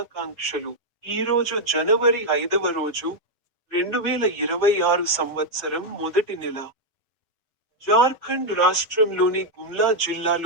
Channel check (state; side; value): normal; both; correlation 0.00